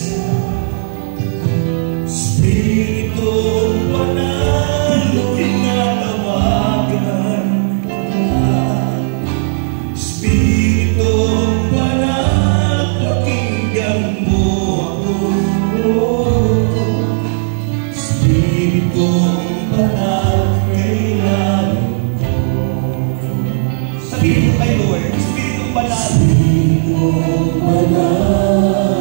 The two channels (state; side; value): silent; left; digital silence